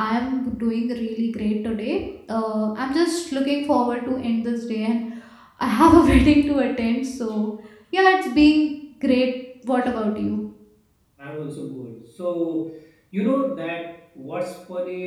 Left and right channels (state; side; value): identical; both; correlation 1.00